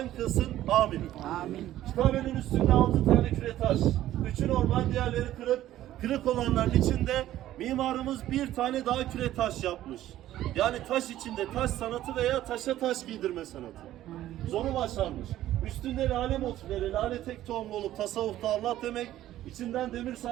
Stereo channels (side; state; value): left; quieter; 13.6 dB